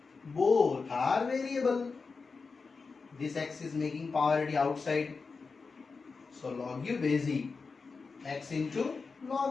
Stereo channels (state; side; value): quieter; right; 4.6 dB